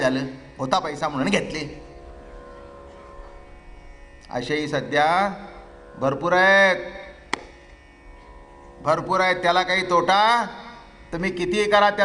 होता पैसा म्हणून घेतले. असेही सध्या भरपूर आहेत. त्याला काही तोटा? तुम्ही कितीही करा,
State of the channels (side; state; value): both; identical; correlation 1.00